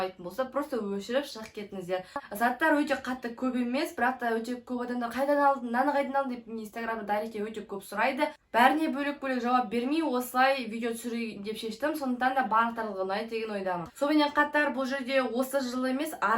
болса, просто өшіріп шығып кетіңіздер. Заттар өте қатты көп емес, бірақ та өте көп адамдар қайдан алдың, наны қайдан алдың деп Инстаграмда дайректке өте көп сұрайды. Бәріне бөлек-бөлек жауап бермей, осылай видео түсірейін деп шештім. Сондықтан да барлықтарыңызға ұнайды деген ойдамын. Сонымен қатар бұл жерде осы жылы емес,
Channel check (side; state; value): both; identical; correlation 1.00